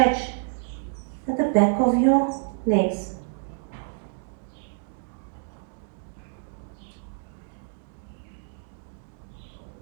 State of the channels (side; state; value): left; silent; digital silence